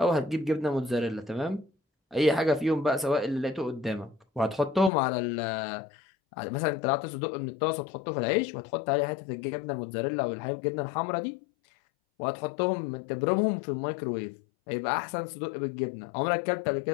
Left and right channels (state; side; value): drops out; right; at 4.9 s